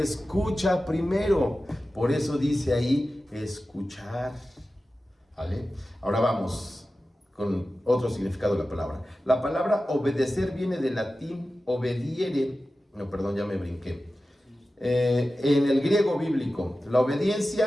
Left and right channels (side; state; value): both; normal; correlation 0.94